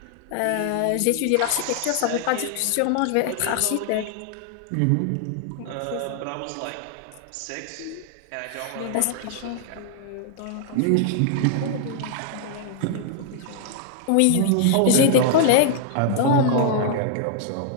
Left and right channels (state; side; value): different; both; correlation -0.01